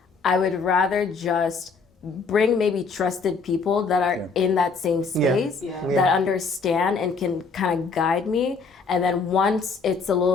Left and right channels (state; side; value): quieter; right; 4.6 dB